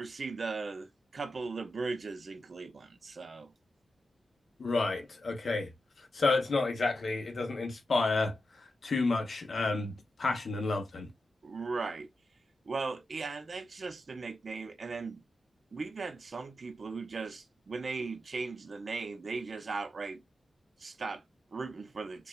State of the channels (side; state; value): both; normal; correlation 0.88